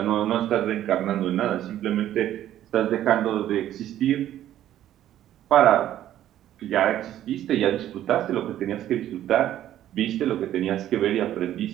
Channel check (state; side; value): quieter; left; 12.2 dB